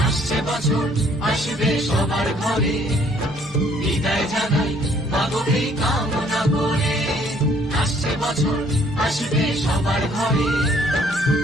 আসছে বছর আসবে সবার ঘরে, বিদায় জানাই মাগো কামনা করে। আসছে বছর আসবে সবার ঘরে,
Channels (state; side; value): normal; both; correlation 0.62